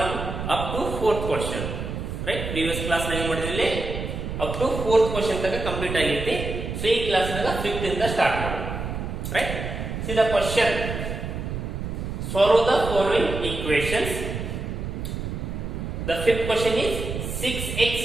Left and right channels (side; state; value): right; noise; rumble, 5 dB below the sound